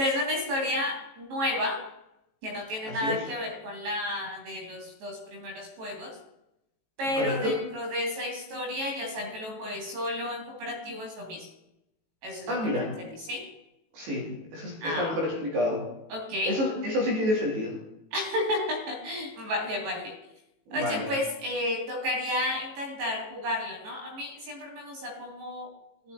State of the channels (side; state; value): left; late; 18 ms